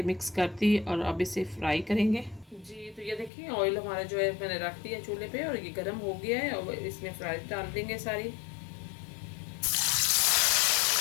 मिक्स कर दी, और अब इसे फ्राई करेंगे। जी तो ये देखिए ऑयल हमारा जो है मैंने रख दिया चूल्हे पे और ये गर्म हो गया है, और इसमें फ्राइज डाल देंगे सारी।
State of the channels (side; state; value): right; drops out; at 3.3 s